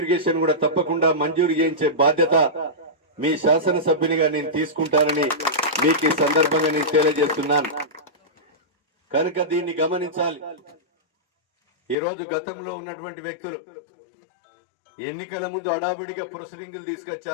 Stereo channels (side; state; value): right; drops out; at 12.0 s